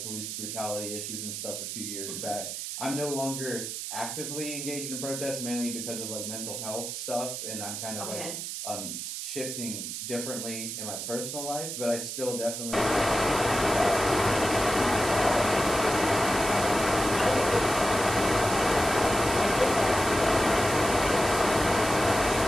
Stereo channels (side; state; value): right; noise; hiss, 6 dB below the sound